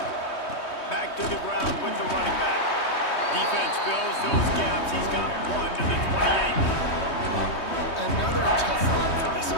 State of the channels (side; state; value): right; late; 3.2 ms